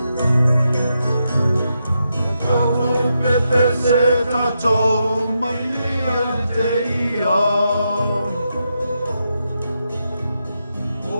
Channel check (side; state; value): both; inverted; correlation -0.84